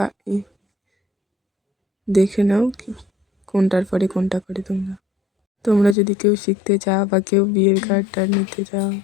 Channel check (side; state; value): right; drops out; at 6.0 s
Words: দেখে নাও কোনটার পরে কোনটা করে তোমরা যদি কেউ শিখতে চাও বা কেউ বিয়ের কার্ডটা নিতে চাও,